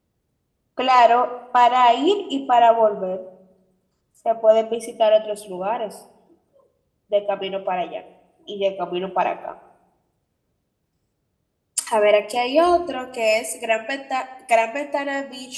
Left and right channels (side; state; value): both; identical; correlation 1.00